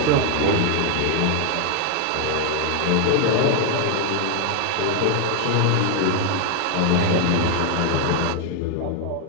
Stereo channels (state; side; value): different; both; correlation 0.00